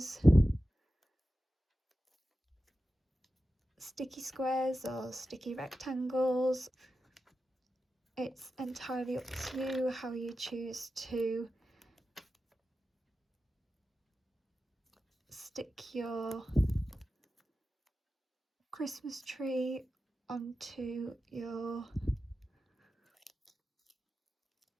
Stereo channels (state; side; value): normal; both; correlation 0.92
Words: sticky squares or sticky rectangles. It's entirely up to you how you choose to stick your Christmas tree onto your